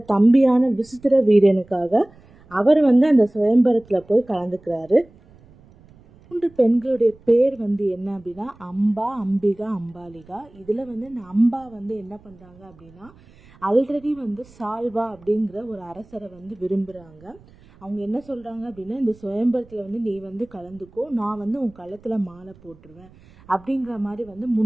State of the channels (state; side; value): noise; right; rumble, 26 dB below the sound